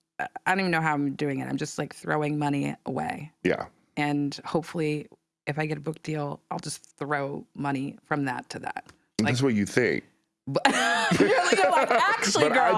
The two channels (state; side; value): identical; both; correlation 1.00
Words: even know how I'm doing it. I'm just like throwing money away. Yeah. And hopefully, if I get a book deal, I'll just throw money from that to that. Like, that's what you think. But you're like, actually, but girl.